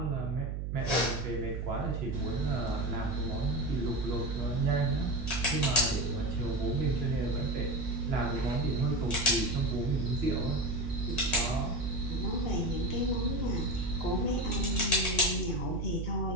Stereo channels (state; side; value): noise; right; hum, 3 dB below the sound